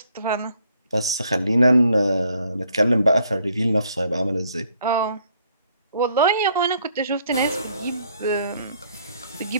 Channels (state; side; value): inverted; both; correlation -0.67